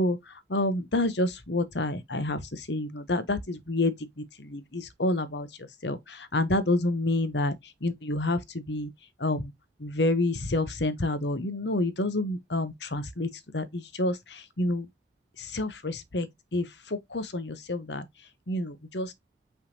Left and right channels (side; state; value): both; normal; correlation 0.38